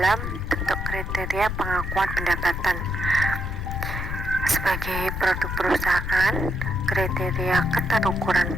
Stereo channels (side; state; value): left; noise; rumble, 4 dB below the sound